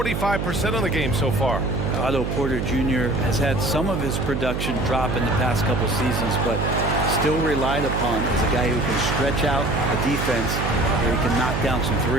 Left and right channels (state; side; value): noise; right; hum, 2 dB below the sound